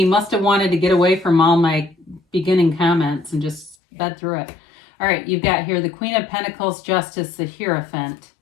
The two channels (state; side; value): drops out; right; at 3.8 s